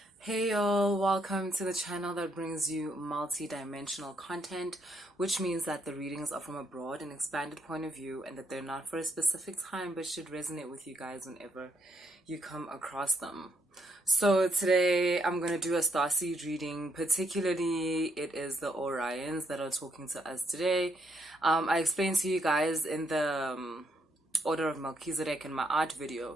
Hey y'all, welcome to the channel that brings you multi-dimensional content, which means that the readings are from a broad and expanded point of view and that they're not for a specific time but should resonate with you guys whenever you come across them. So today I'm going to do a Starseed reading. Particularly it is the Orions that are talking to us today. I explained to you guys in the Order of Melchizedek in my art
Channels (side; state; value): both; normal; correlation 0.75